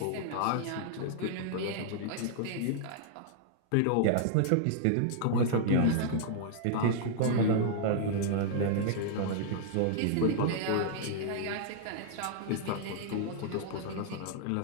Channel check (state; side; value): different; both; correlation -0.01